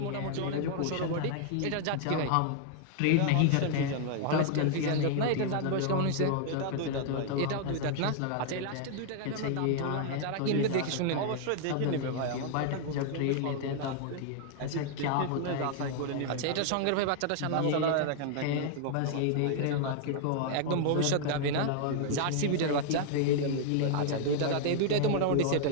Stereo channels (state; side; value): different; both; correlation 0.00